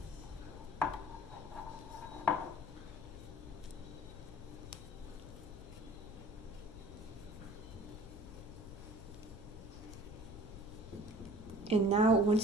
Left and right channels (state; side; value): noise; left; rumble, 12 dB below the sound